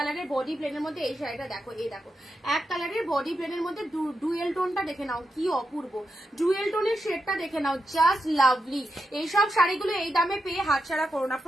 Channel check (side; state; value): both; normal; correlation 0.86